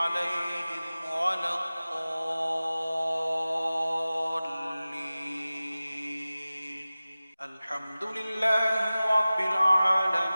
ولا الضالين. الحمد لله رب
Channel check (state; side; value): inverted; both; correlation -0.97